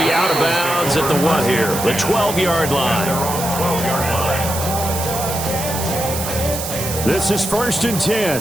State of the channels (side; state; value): right; noise; hiss, 6 dB below the sound